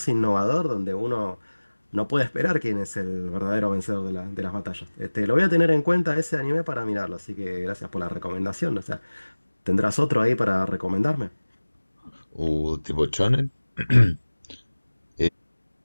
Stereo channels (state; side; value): inverted; both; correlation -1.00